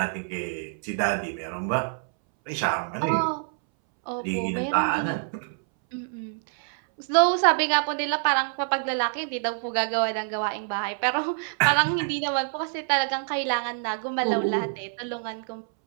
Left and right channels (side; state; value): left; silent; 61 dB below the other